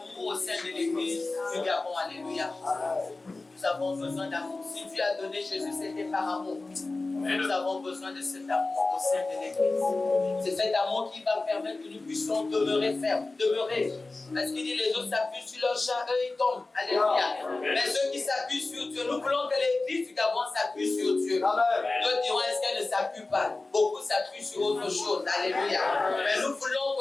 au sein de l'église du Gabon. Alléluia. Nous avons besoin d'amour. Si Dieu a donné Jésus, c'était par amour. Nous avons besoin de cet amour au sein de l'église. C'est cet amour qui va permettre que nous puissions demeurer fermes, demeurer. Parce qu'il dit les autres s'appuient sur leur chat, eux ils tombent. Alléluia. Mais ceux qui s'appuient sur Dieu, nous voulons que l'église du Gabon s'appuie sur Dieu. Nous dirons, est-ce qu'elle ne s'appuie pas? Beaucoup s'appuient sur autre chose. Alléluia. Mais nous voulons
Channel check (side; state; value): right; quieter; 3.3 dB